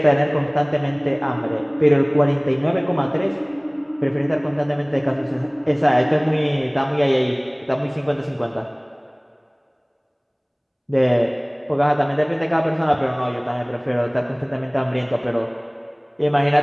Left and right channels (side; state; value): both; identical; correlation 1.00